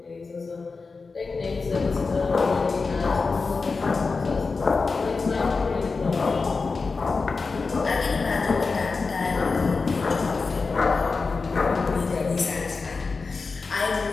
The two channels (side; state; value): right; quieter; 4.3 dB